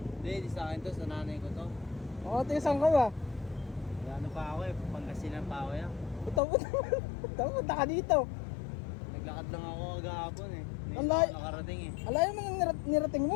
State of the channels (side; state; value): right; drops out; at 6.4 s